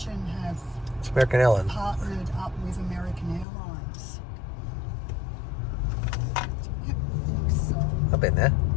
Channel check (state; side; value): drops out; right; at 3.5 s